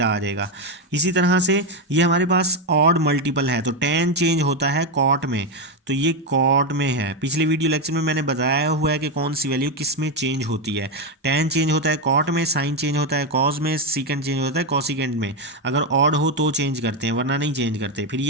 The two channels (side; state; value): both; normal; correlation 0.08